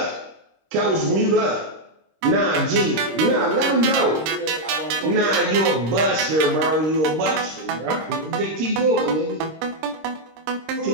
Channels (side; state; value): left; late; 26 ms